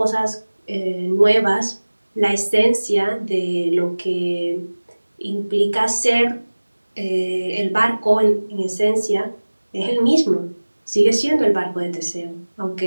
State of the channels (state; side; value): inverted; both; correlation -1.00